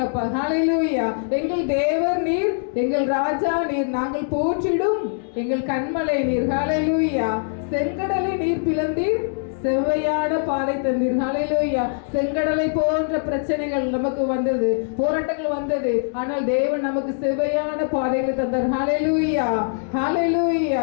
ஹalleluya எங்கள் தேவர் நீர் எங்கள் ராஜா நீர் நாங்கள் போற்றிடும் எங்கள் கண்மலை நீர் ஹalleluya செங்கடலை நீர் பிளந்தீர் செவ்வையான பாதை தந்தீர் ஹalleluya செங்கடலை போன்ற பிரச்சனைகள் நமக்கு வந்தது போராட்டங்கள் வந்தது ஆனால் தேவன் நமக்கு செவ்வையான பாதைகள் தந்தார் ஹalleluya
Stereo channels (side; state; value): right; silent; digital silence